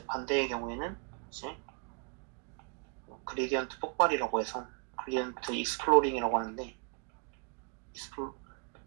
반대의 경우에는 이제 그레디언트 폭발이라고 해서 그레디언트 익스플로링이라고 하는데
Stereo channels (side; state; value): left; quieter; 37.2 dB